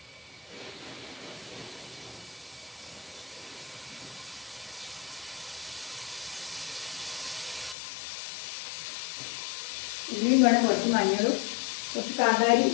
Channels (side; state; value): right; drops out; at 7.8 s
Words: ഉള്ളിയും വേണം, കുറച്ച് മഞ്ഞളും, കുറച്ച് കാന്താരി